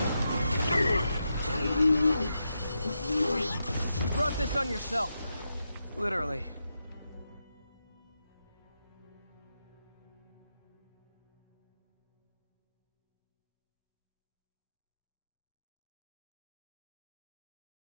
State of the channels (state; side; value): inverted; both; correlation -0.86